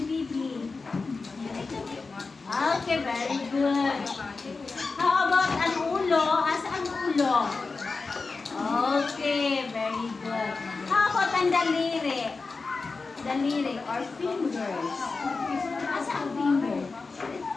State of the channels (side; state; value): right; quieter; 4.1 dB